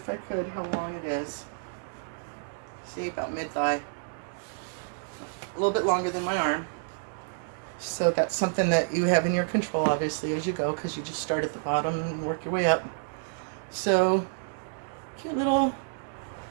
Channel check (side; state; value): left; silent; digital silence